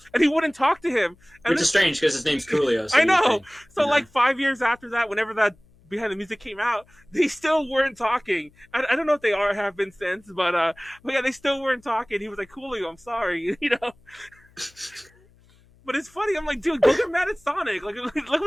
and he wouldn't talk to him. Which is strange because his name's Coolio. So I know. So, like, 5 years after that, whenever that Behind the Music came out, they still weren't talking. I don't know if they have been since, but yeah, they still weren't talking. He was like, Coolio, I'm sorry, But it's funny. I'm like, dude, go get mad at Sonic. Like, look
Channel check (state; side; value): noise; left; hum, 29 dB below the sound